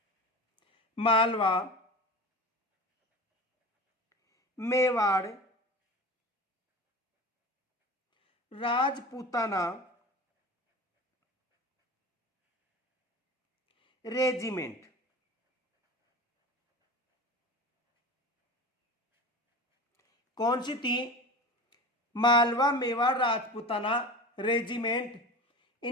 मालवा मेवाड़ राजपूताना रेजिमेंट। कौन सी थी, मालवा मेवाड़ राजपूताना रेजिमेंट।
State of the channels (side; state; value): both; normal; correlation 0.31